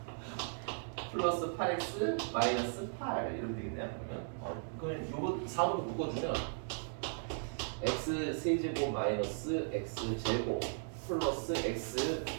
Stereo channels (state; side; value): silent; left; digital silence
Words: 플러스 8x 마이너스 8 이러면 되겠네요. 그러면 요거 4로 묶어주면 x 세제곱 마이너스 x 제곱 플러스 x